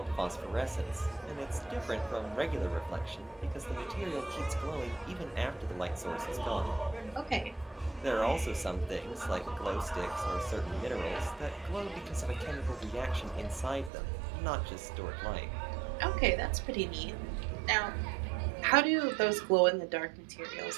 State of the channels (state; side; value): drops out; left; at 13.9 s